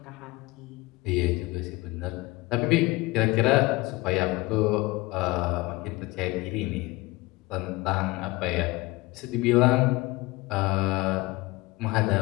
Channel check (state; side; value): quieter; right; 21.7 dB